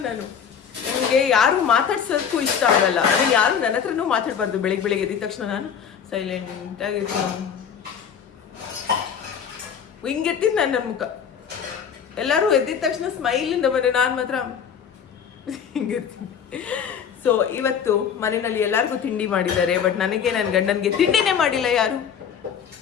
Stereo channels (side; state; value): right; quieter; 7.6 dB